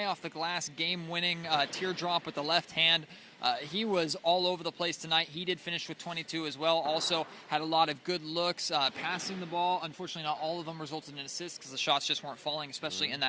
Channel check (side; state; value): both; identical; correlation 1.00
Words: off the glass, game-winning teardrop with the left hand. He was all over the place tonight. He did finish with 22 as well. Also had a lot of good looks, passing the ball. Unfortunately, not all of them resulted in assists because the shots just weren't falling, especially in